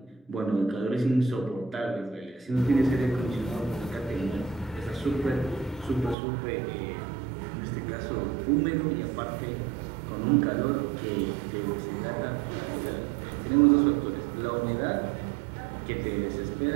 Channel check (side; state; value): left; drops out; at 6.2 s